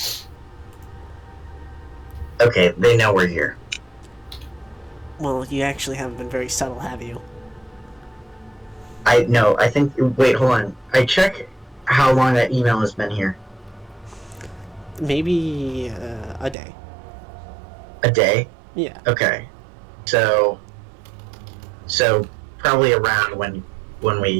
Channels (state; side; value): drops out; left; at 16.6 s